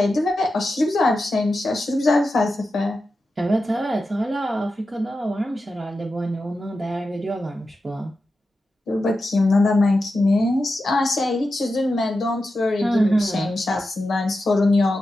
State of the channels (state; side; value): normal; both; correlation 0.91